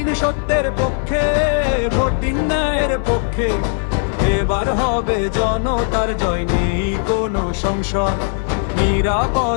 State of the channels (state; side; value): silent; right; 55 dB below the other